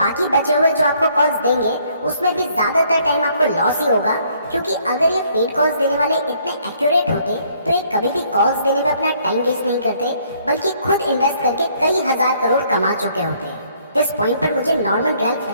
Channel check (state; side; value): inverted; both; correlation -0.65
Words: बचे हुए जो आपको कॉल्स देंगे उसमें भी ज़्यादातर टाइम आपको लॉस ही होगा, क्योंकि अगर ये पेड कॉल्स देने वाले इतने एक्यूरेट होते तो ये कभी भी कॉल्स देने में अपना टाइम वेस्ट नहीं करते, बल्कि खुद इन्वेस्ट करके कई हजार करोड़ कमा चुके होते। इस पॉइंट पर मुझे नॉर्मन रैल्फ